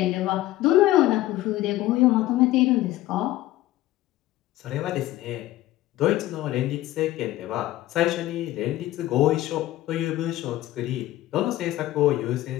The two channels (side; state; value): right; quieter; 15.5 dB